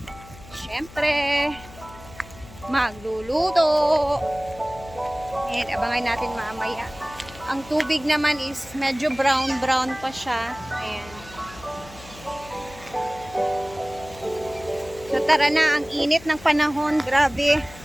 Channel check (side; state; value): left; noise; hum, 19 dB below the sound